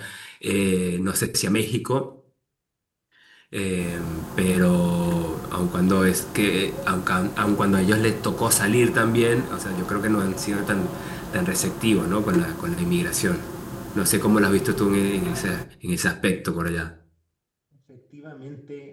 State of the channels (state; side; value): identical; both; correlation 1.00